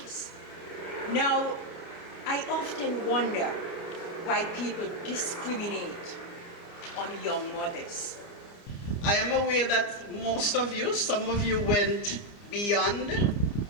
Now, I often wonder why people discriminate on young mothers. I am aware that most of you, some of you went beyond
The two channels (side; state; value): right; late; 30 ms